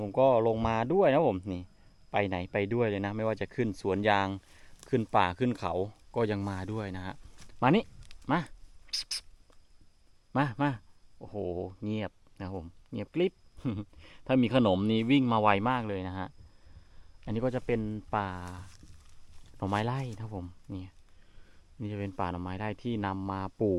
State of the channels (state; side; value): identical; both; correlation 1.00